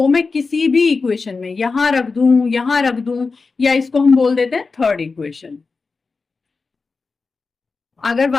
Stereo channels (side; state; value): right; quieter; 4.3 dB